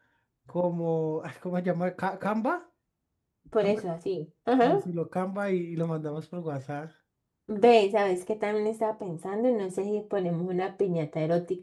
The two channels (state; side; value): identical; both; correlation 1.00